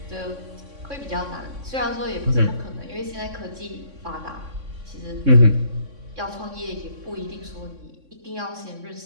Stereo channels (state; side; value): late; left; 3.6 ms